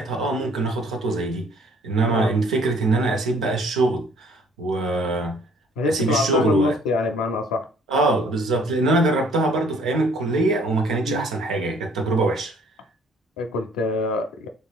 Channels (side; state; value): both; normal; correlation 0.58